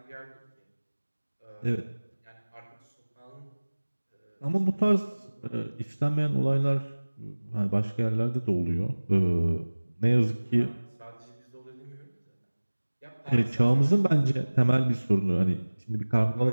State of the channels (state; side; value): inverted; both; correlation -1.00